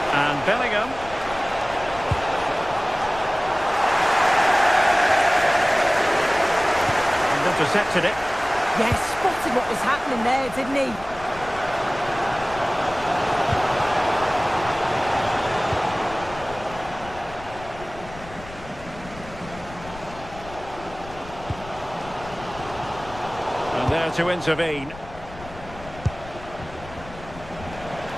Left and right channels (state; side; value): noise; left; rumble, 16 dB below the sound